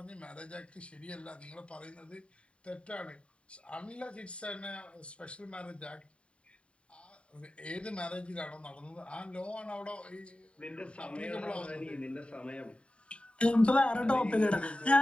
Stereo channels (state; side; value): late; right; 0.059 ms